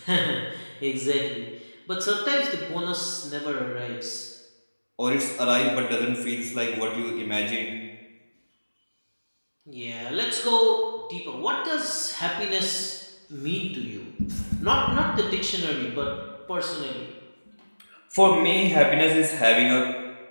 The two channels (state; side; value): inverted; both; correlation -1.00